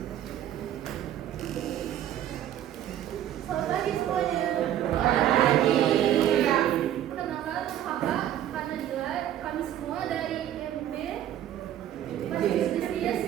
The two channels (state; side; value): quieter; left; 11.5 dB